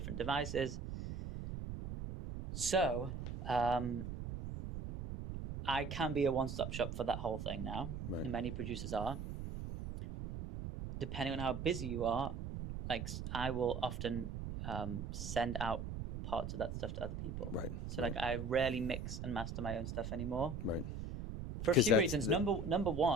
devices. So I can be a one-stop shop for that whole thing now. Right. And many producers are. Depending on how busy you are, like I will often send out parts of that stuff to other people. Right. So like I rarely mix and master my own stuff anymore. Right. For a few reasons. Number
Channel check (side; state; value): right; noise; rumble, 6 dB below the sound